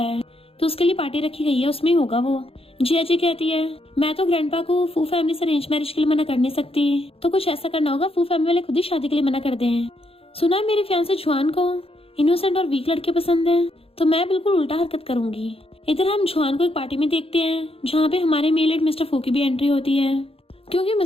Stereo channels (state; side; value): late; right; 0.27 ms